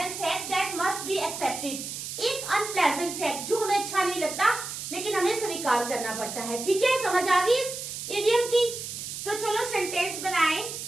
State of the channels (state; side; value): noise; right; hiss, 7 dB below the sound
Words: fact that must be accepted, एक अनप्लेजेंट फैक्ट जो हमें अच्छा नहीं लगता लेकिन हमें स्वीकार करना पड़ता है, ठीक है। समझ आ गई इस इडियम की? तो चलो सेंटेंस बनाएं।